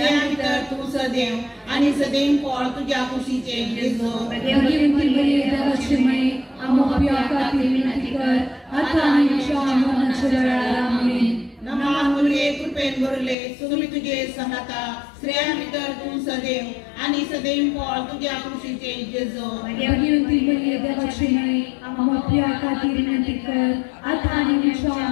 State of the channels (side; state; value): right; drops out; at 13.4 s